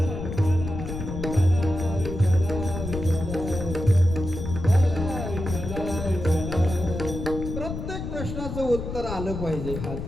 उत्तर आलं पाहिजे.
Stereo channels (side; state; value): left; noise; rumble, 6 dB below the sound